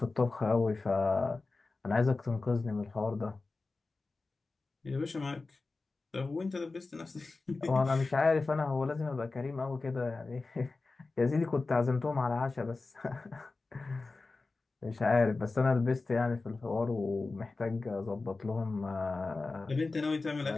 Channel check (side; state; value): right; quieter; 3.7 dB